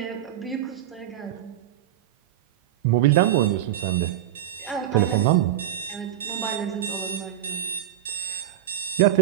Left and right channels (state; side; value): quieter; left; 12.1 dB